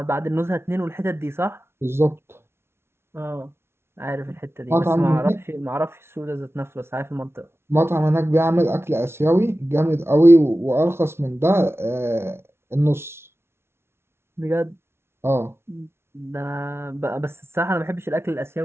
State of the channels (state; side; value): late; left; 0.12 ms